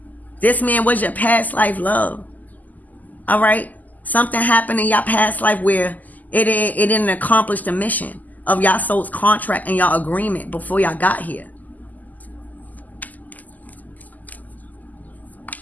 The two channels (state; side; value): late; right; 0.081 ms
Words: This man was your past life love. All right? Something happened in your past life where it didn't accomplish the mission of y'all soul's contract and y'all agreement before y'all got here.